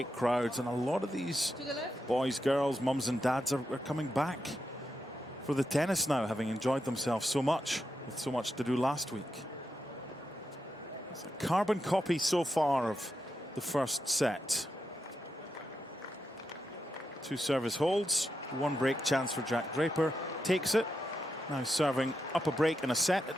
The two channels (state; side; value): normal; both; correlation 0.86